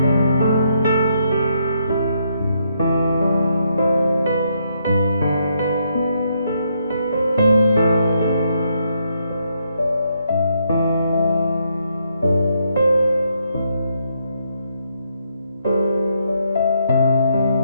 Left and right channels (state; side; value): inverted; both; correlation -0.76